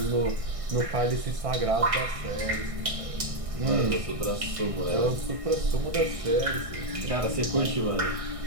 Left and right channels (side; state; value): left; late; 1.6 ms